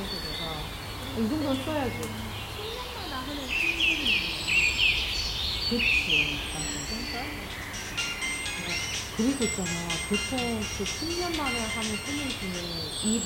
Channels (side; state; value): both; identical; correlation 1.00